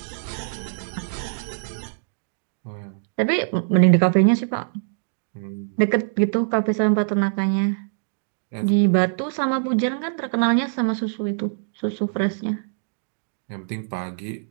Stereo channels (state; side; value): silent; left; digital silence